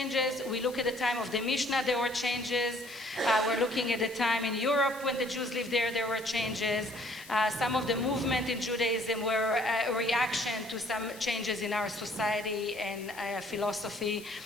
We look at the time of the Mishnah, there were changes. We're looking at the time in Europe when the Jews lived there, there were changes. Some of the movement in Judaism were a reaction to some changes in our society and philosophy.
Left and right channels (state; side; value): noise; left; hiss, 18 dB below the sound